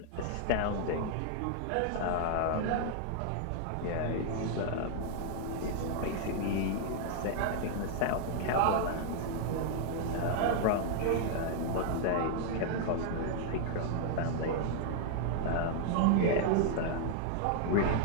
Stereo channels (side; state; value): both; different; correlation 0.00